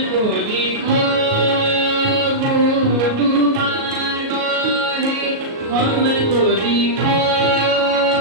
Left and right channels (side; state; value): left; late; 37 ms